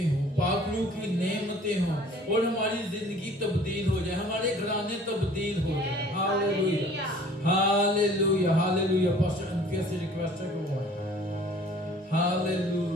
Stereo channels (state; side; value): normal; both; correlation 0.51